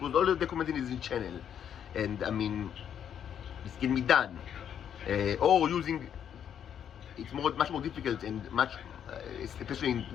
all documented in this channel, and I mean, this can be done. Or using, it's much more difficult and much, especially in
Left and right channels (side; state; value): right; quieter; 9.0 dB